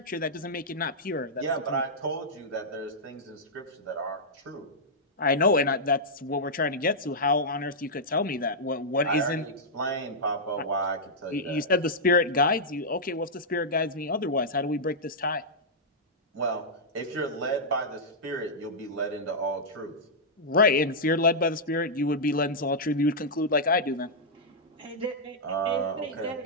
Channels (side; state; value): both; normal; correlation -0.09